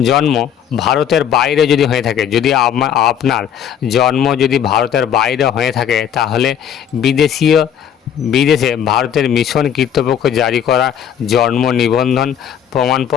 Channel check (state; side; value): quieter; right; 9.0 dB